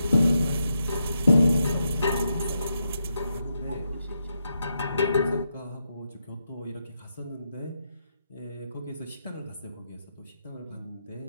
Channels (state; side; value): inverted; both; correlation -0.83